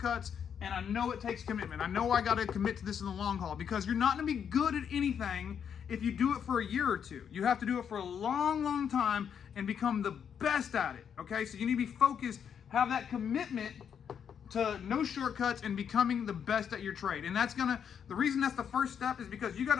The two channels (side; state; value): right; quieter; 7.8 dB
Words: and I know it takes commitment. I know I got to commit to this in the long haul, because you're not going to be good at anything if you do it for a year or two. You have to do it for a long, long time and become the best at it, okay? So you need to be focused, have that commitment to no shortcuts and becoming the best at your trade. And the reason that's the first step is because you got to